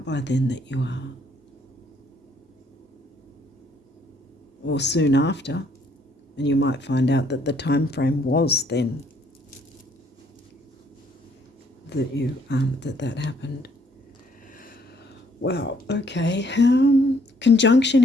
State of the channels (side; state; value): both; normal; correlation 0.65